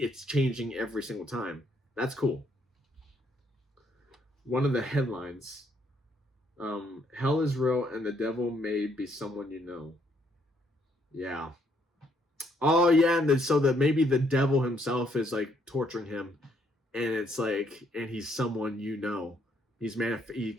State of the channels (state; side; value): normal; both; correlation 0.70